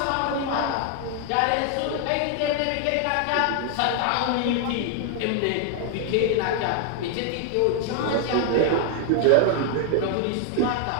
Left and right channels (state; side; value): different; both; correlation 0.00